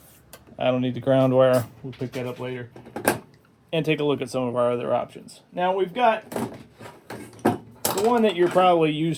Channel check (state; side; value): identical; both; correlation 1.00